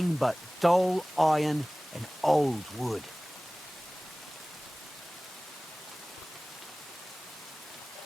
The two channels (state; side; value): normal; both; correlation 0.98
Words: but dull iron and old wood.